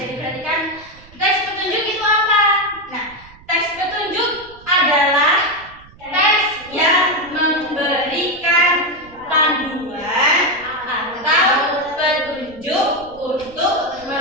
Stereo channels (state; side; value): noise; right; rumble, 23 dB below the sound